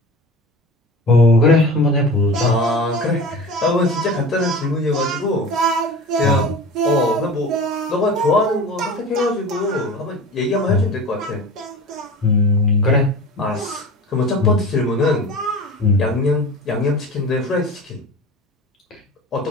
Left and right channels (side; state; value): both; normal; correlation 0.35